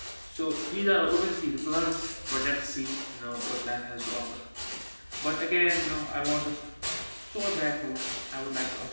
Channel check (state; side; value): inverted; both; correlation -1.00